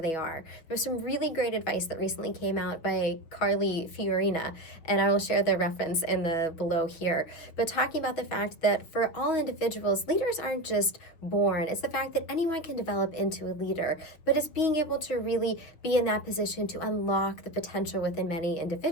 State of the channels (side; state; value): right; late; 6.3 ms